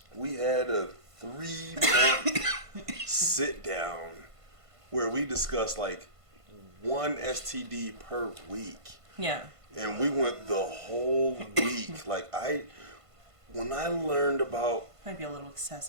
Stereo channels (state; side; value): late; left; 1.5 ms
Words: we had a 3-month sit-down where we discussed, like, one STD per week. Yeah. And we went the whole week. When I learned about Might be a little